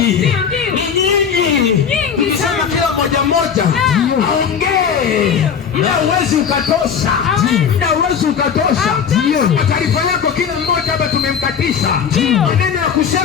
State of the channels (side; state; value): right; quieter; 7.2 dB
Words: Ni nyingi. Tukisema kila moja aongee. Ila uwezi ukatosha. Ila uwezi ukatosha. Taarifa yako kila mmoja hapa tumemkatisha. Maneno ya